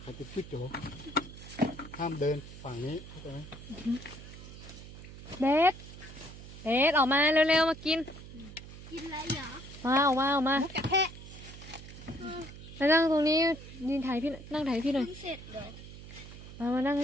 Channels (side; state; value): right; noise; hum, 14 dB below the sound